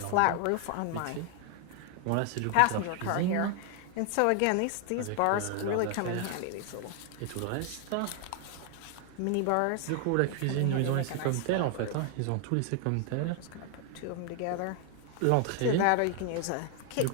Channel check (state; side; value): different; both; correlation 0.00